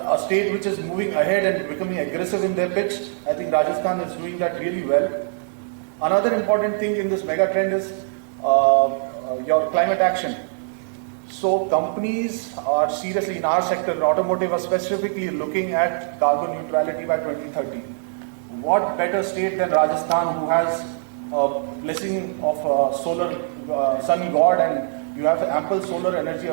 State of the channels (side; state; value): left; silent; digital silence